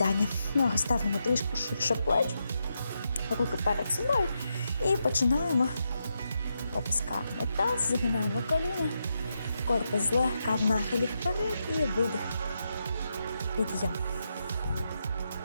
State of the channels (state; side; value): inverted; both; correlation -0.84